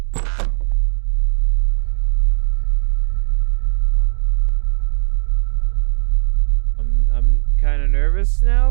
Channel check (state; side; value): silent; left; 55 dB below the other